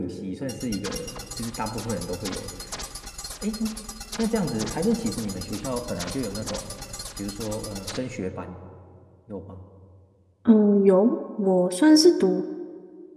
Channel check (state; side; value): identical; both; correlation 1.00